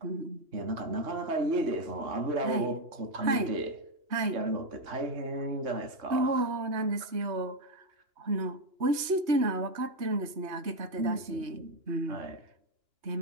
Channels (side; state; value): left; late; 3.2 ms